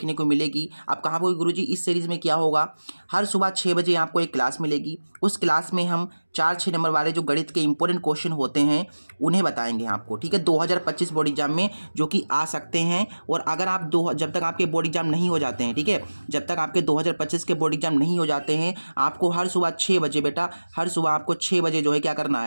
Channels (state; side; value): inverted; both; correlation -1.00